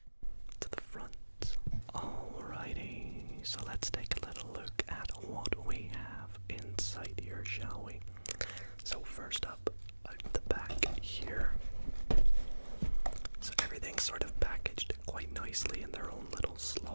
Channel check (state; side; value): inverted; both; correlation -1.00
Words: to the front. Alrighty, so let's take a little look at what